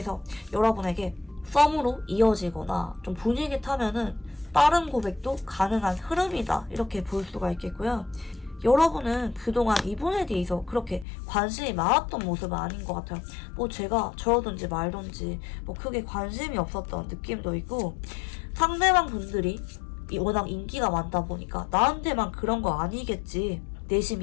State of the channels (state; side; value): drops out; right; at 11.1 s